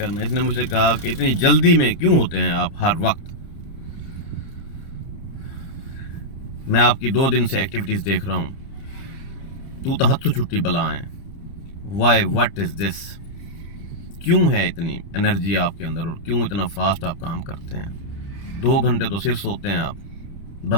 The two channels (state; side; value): late; right; 30 ms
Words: इसने मुझसे कहा कि इतनी जल्दी में क्यों होते हैं आप हर वक्त। मैं आपकी 2 दिन से एक्टिविटीज देख रहा हूं। तू तो हत्थों छुट्टी बला है। Why, what is this? क्यों है इतनी एनर्जी आपके अंदर और क्यों इतना फास्ट आप काम करते हैं? 2 घंटे तो सिर्फ सोते हैं आप।